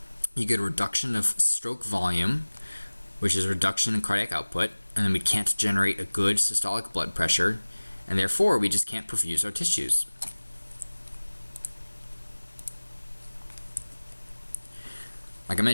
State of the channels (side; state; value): both; inverted; correlation -1.00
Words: you get a reduction of stroke volume, which is a reduction in cardiac output, and then we can't generate a good systolic blood pressure, and therefore we just can't perfuse our tissues. Like I